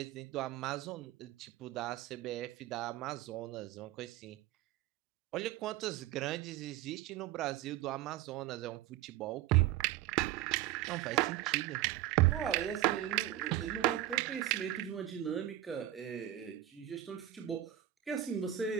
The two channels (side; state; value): left; quieter; 13.5 dB